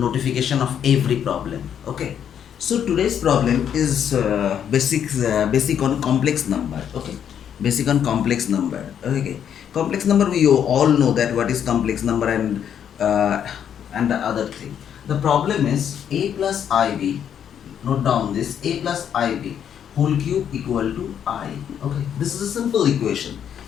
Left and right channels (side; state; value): right; quieter; 8.9 dB